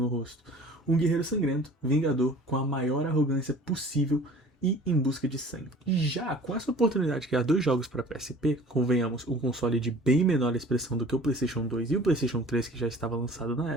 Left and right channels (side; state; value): both; normal; correlation 0.46